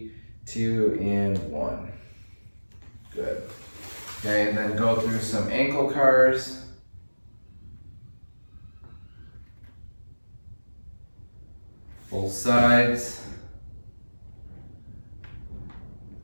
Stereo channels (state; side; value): inverted; both; correlation -1.00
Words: 2, and 1. Good. Okay, and then go through some ankle cars. Both sides.